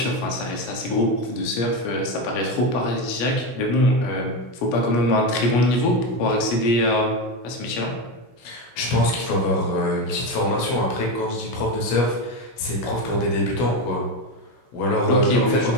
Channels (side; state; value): right; late; 16 ms